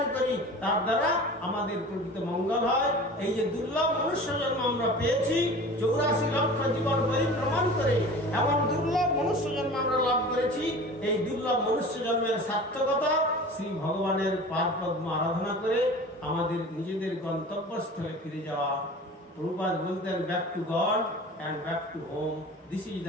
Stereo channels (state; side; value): normal; both; correlation 0.39